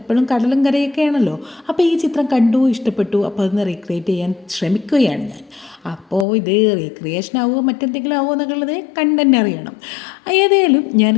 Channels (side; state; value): right; drops out; at 6.2 s